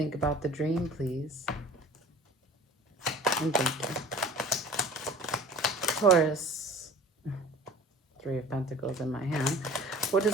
about the dream, please? And thank you. Taurus, 3 of Pentacles in my hand. What does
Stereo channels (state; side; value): normal; both; correlation 0.44